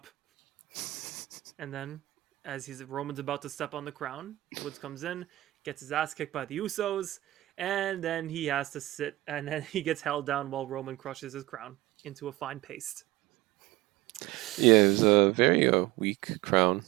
And then, as Roman's about to step on the crown, Woods comes in, gets his ass kicked by the Usos, and then he has to sit, and then he gets held down while Roman crushes his crown into a fine paste. Yeah, it was a very weak crown.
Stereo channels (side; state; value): left; quieter; 17.9 dB